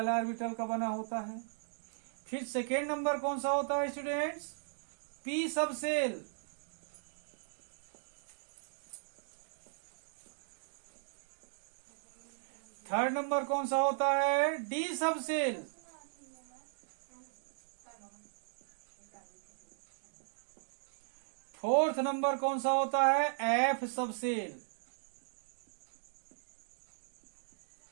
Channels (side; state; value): left; silent; digital silence